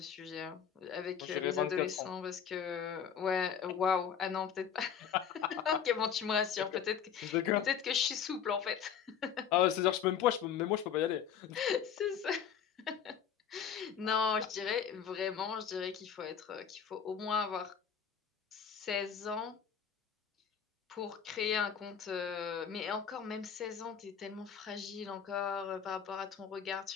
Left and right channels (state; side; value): quieter; right; 7.9 dB